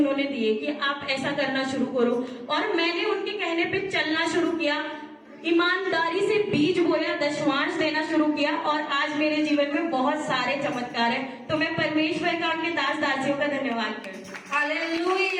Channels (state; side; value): identical; both; correlation 1.00